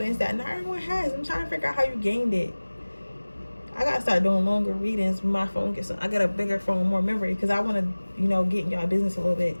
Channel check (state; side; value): inverted; both; correlation -1.00